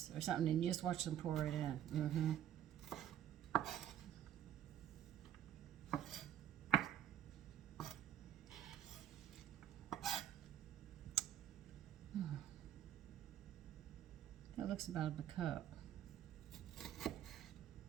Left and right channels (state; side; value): quieter; left; 10.6 dB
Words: or something, and you just watch them pour it in. That looks about a cup.